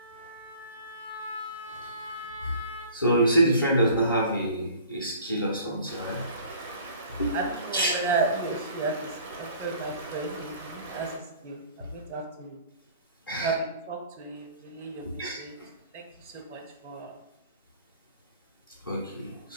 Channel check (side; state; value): both; inverted; correlation -0.49